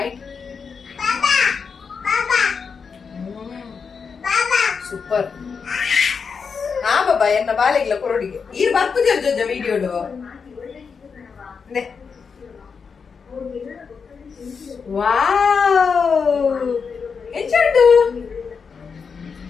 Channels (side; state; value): right; quieter; 5.7 dB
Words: ಸೂಪರ್ ಹಾ ಬಾಬಾ ಎನ್ನ ಬಾಲೆಗ್ಲ ಕೊರಡಿಗೆ ಈರ್ ಬರ್ಪುಜ ಜೊಜ ವಿಡಿಯೋಡು ವಾವ್ ಎಂಚುಂಡು